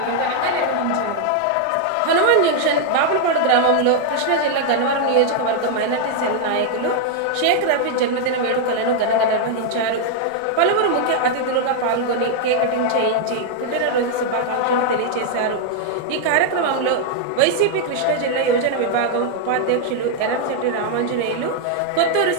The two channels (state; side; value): different; both; correlation 0.00